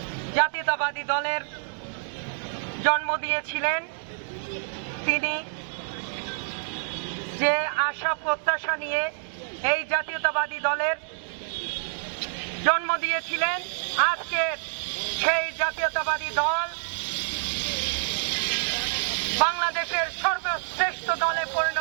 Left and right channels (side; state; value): left; silent; digital silence